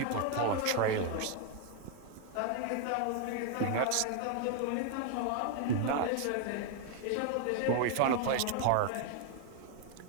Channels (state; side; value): different; both; correlation 0.00